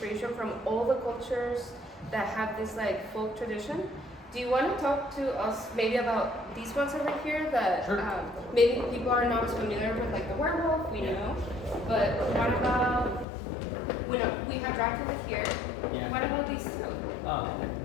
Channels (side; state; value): right; drops out; at 13.2 s